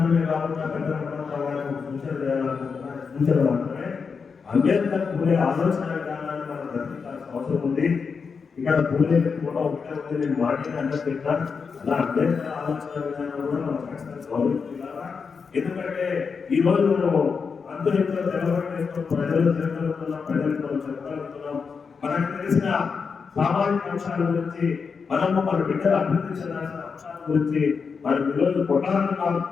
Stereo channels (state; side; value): quieter; right; 5.5 dB